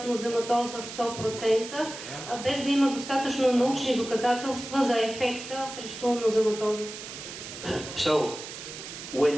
нозематоза 100%, без да има достатъчно научни доказателства за ефекта срещу нозематоза. So,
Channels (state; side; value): noise; right; hiss, 11 dB below the sound